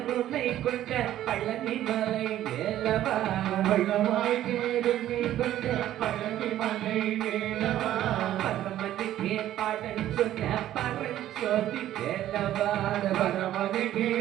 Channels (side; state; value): left; quieter; 12.7 dB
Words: கொண்ட பழனிமலை வேலவா, வளமாய் கருணை கொண்ட பழனிமலை வேலவா, பரமனுக்கே பாடல் சொன்ன பரஞ்சோதி வேலவா, பரமனுக்கே